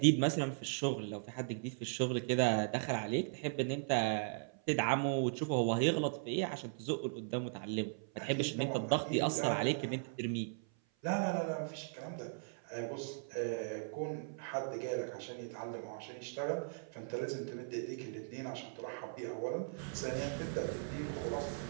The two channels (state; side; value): silent; left; 52 dB below the other